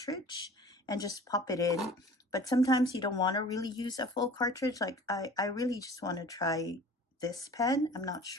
and just pop it in, but sometimes you don't want to really use a full cartridge. Like I really just want to try this pen. I'm not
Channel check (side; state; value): both; normal; correlation 0.44